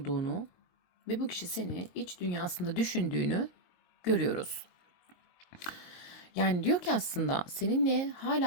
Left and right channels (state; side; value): late; right; 22 ms